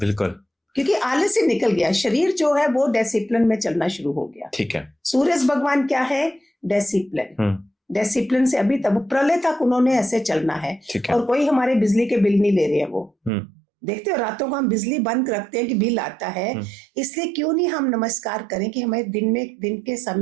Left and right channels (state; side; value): drops out; left; at 13.3 s